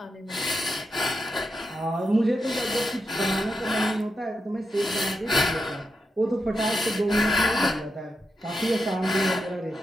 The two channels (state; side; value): normal; both; correlation 0.86